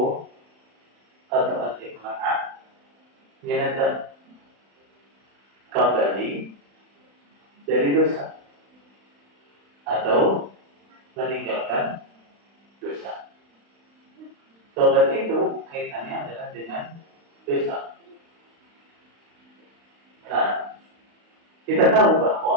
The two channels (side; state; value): left; late; 35 ms